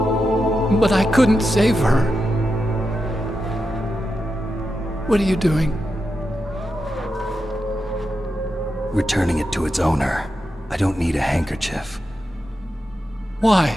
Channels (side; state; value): both; normal; correlation 0.88